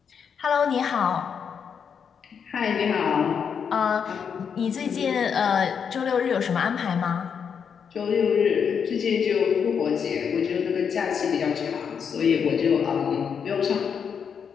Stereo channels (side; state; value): right; quieter; 7.0 dB